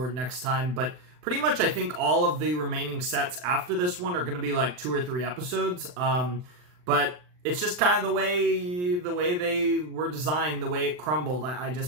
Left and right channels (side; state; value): left; late; 39 ms